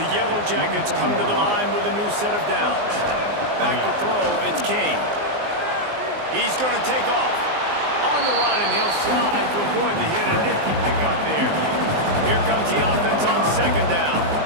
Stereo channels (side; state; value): left; late; 19 ms